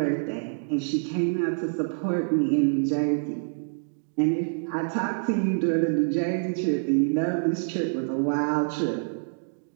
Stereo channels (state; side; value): silent; left; digital silence